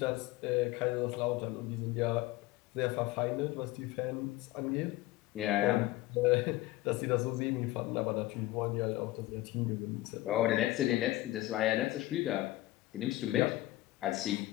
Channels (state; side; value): quieter; right; 17.5 dB